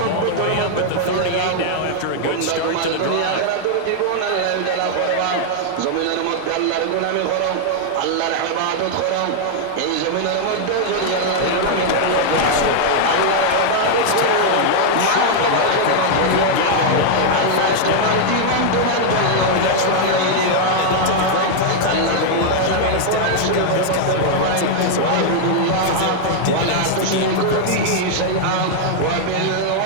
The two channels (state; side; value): different; both; correlation 0.00